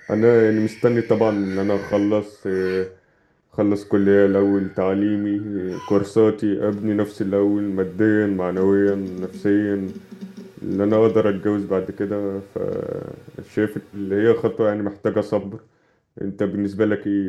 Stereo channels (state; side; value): identical; both; correlation 1.00